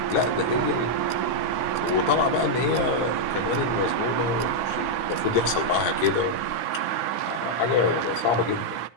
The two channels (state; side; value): late; right; 17 ms